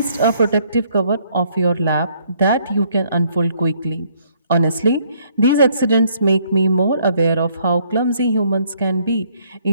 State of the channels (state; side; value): inverted; both; correlation -0.67